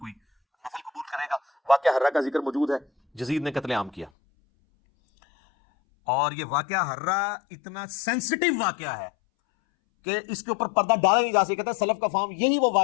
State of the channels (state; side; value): drops out; right; at 4.1 s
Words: نفل قبول کرے گا۔ واقعہ ہرہ کا ذکر موجود ہے، یزید نے قتل عام کیا، اور یہ واقعہ ہرہ اتنا سینسٹیو واقعہ ہے کہ اس کے اوپر پردہ ڈالا نہیں جا سکتا۔ کہتا ہے سلف کا فہم یہی وہ